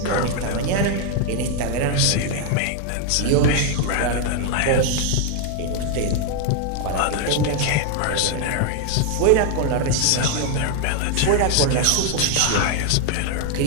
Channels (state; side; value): different; both; correlation 0.00